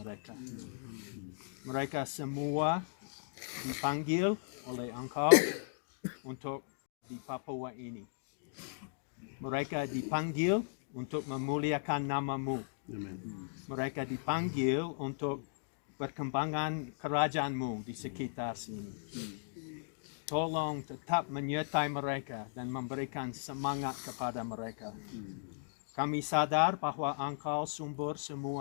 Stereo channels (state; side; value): silent; right; digital silence